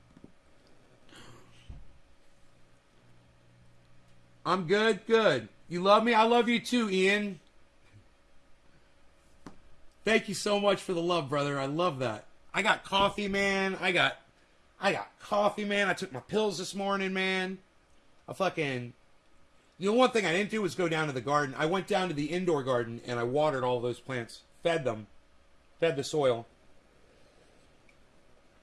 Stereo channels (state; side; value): identical; both; correlation 1.00